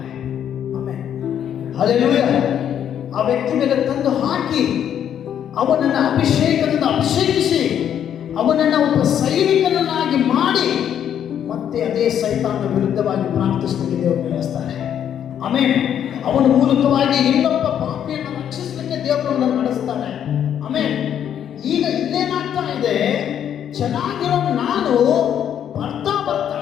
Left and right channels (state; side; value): quieter; right; 9.5 dB